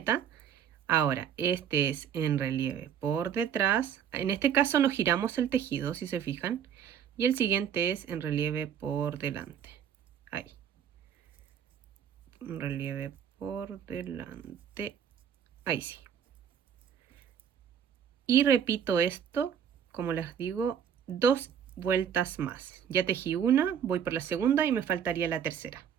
Ahora, este es en relieve por detrás. En este caso no giramos el tejido, si se fijan. Y el siguiente es en relieve por delante. Ahí. En relieve por delante. Ahí sí. Y repito esto, como les digo, dos vueltas más. Ya tejí una, voy por la segunda y me faltaría la tercera.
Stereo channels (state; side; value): quieter; left; 8.5 dB